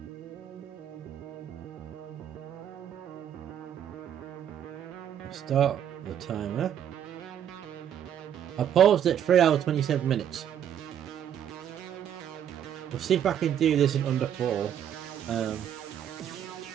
start the timer. I paused at 3 hours 27 minutes. We'll see if I can do this in under 4.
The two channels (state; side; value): quieter; left; 9.6 dB